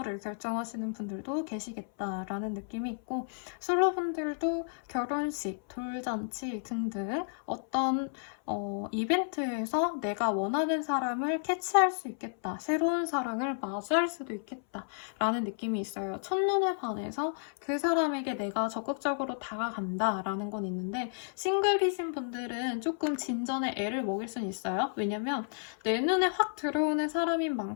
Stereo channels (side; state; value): right; silent; 56 dB below the other